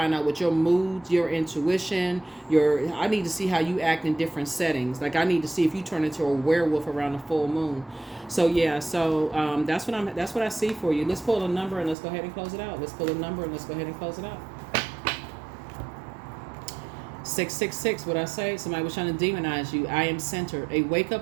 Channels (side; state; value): left; drops out; at 12.0 s